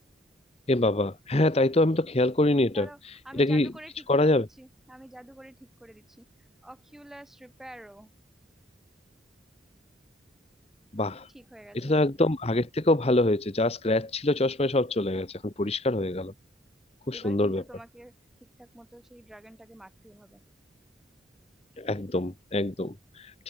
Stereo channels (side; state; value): both; normal; correlation 0.56